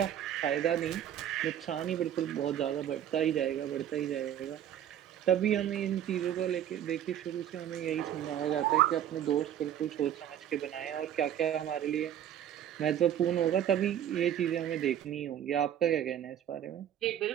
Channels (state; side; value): quieter; left; 10.5 dB